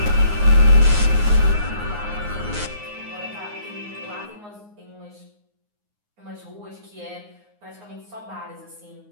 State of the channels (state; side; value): late; left; 9.6 ms